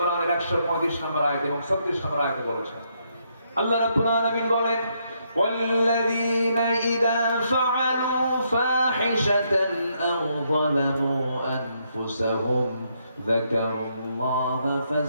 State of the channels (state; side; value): inverted; both; correlation -0.76